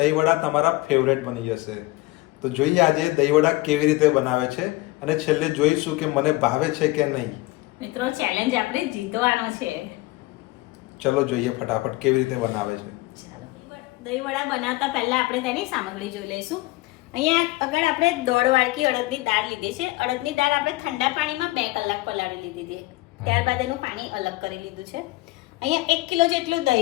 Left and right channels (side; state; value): right; quieter; 20.4 dB